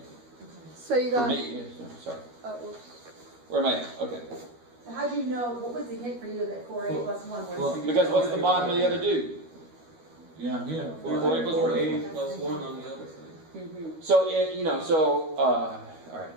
So you For got. me. Yeah, sorry. Whoops. Where am I at? Okay. So how'd you know, what was the hint for you that 4a plus 1 was? Well, Because what's the bottom of the other dude? Yeah, here. 4a plus 1. 8 plus 1 on the other side. So, all right.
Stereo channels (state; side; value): late; left; 13 ms